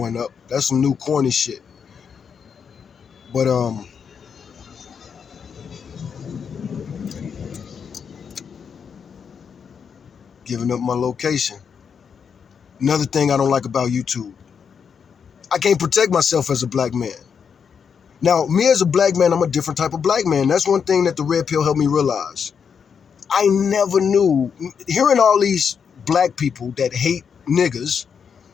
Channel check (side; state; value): right; quieter; 6.7 dB